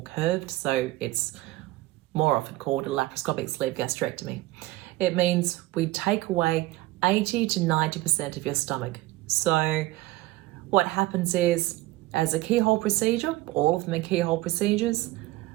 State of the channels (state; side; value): quieter; left; 18.3 dB